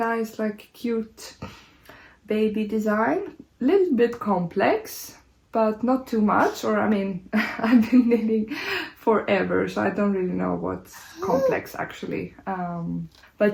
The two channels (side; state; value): both; identical; correlation 1.00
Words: like cute baby design. A little bit complex, but not too much, or I mean, I've been knitting forever, so I don't really know what's complex actually.